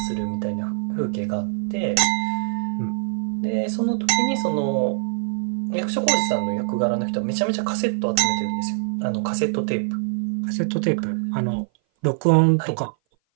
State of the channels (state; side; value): silent; left; 57 dB below the other